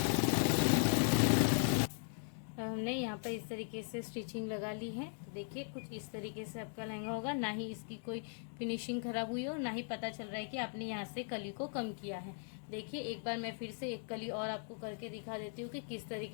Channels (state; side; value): silent; right; 52 dB below the other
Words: हमने यहाँ पर इस तरीके से स्टिचिंग लगा ली है। तो देखिए कुछ इस तरीके से आपका लहंगा होगा, ना ही इसकी कोई फिनिशिंग खराब हुई हो, ना ही पता चल रहा है कि आपने यहाँ से कली को कम किया है। देखिए एक बार मैं फिर से एक कली और आपको करके दिखा देती हूँ कि किस